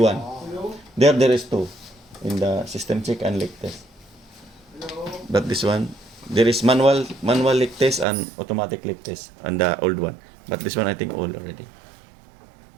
There is two in the system check and leak test. But this one there is manual leak test and automatic leak test and the old one. But this one I think old already.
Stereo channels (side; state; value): left; drops out; at 8.1 s